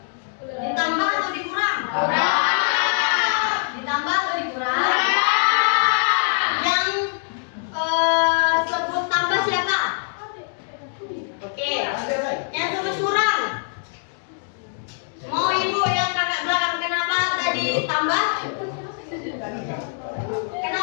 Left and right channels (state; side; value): silent; right; digital silence